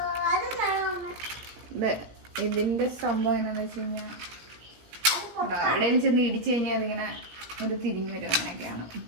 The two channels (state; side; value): late; left; 17 ms